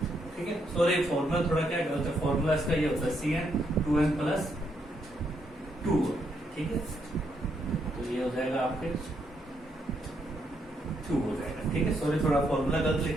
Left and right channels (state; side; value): normal; both; correlation 0.76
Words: ठीक है। सॉरी, फॉर्मूला थोड़ा क्या गलत है, फॉर्मूला इसका ये होता है Cn2n+2। ठीक है, तो ये हो जाएगा आपके 2 हो जाएगा। ठीक है, सॉरी थोड़ा फॉर्मूला गलत